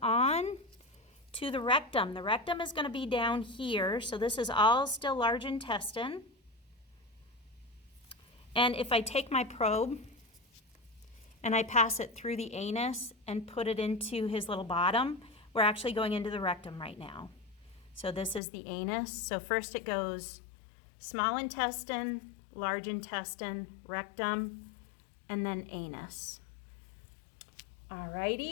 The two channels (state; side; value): drops out; right; at 18.4 s